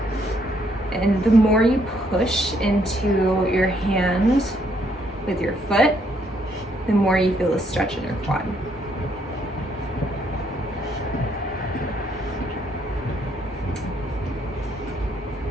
And the more you push into your hand with your foot, the more you feel the stretch in your quad.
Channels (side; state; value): both; normal; correlation 0.70